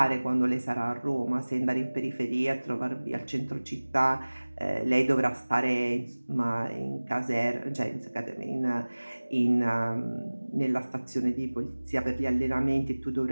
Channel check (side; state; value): both; inverted; correlation -1.00